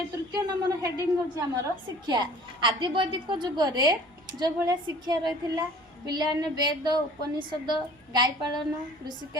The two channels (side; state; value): both; normal; correlation 0.48